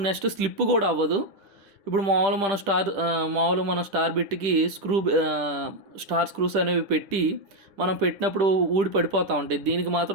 నెక్స్ట్ స్లిప్ కూడా అవ్వదు. ఇప్పుడు మామూలు మన స్టార్ బిట్కి స్టార్ స్క్రూస్ అనేవి పెట్టి మనం పెట్టినప్పుడు ఊడి పడిపోతూ ఉంటాయి. దీనికి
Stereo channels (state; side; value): late; left; 10 ms